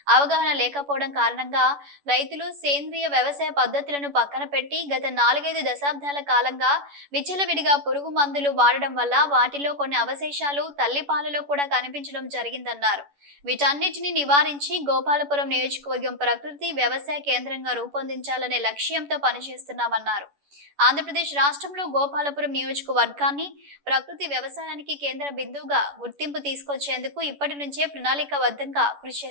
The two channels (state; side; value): late; left; 11 ms